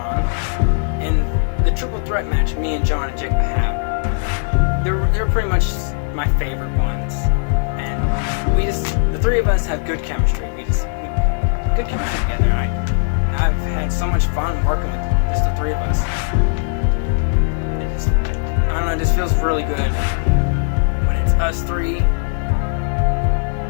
and the triple threat match me and John and W.A.W. They're pretty much my favorite ones, and the three of us have good chemistry. Good chemistry together. I've had so much fun working with just the three of us. It just feels really good when it's us three.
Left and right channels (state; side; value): silent; right; 67 dB below the other